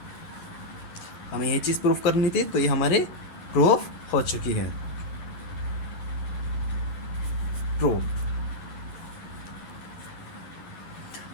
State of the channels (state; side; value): late; right; 11 ms